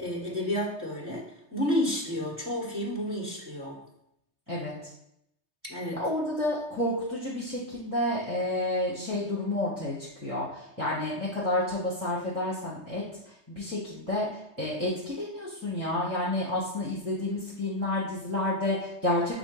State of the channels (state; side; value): late; left; 3.2 ms